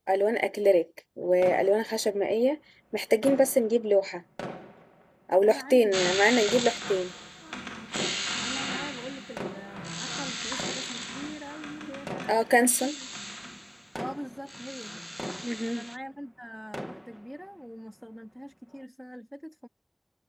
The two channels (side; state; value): both; identical; correlation 1.00